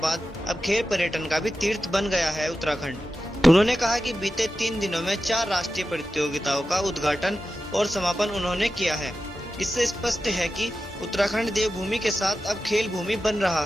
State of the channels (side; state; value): both; normal; correlation 0.92